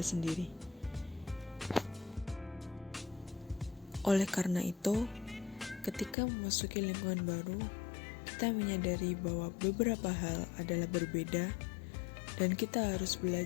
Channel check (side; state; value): right; drops out; at 6.2 s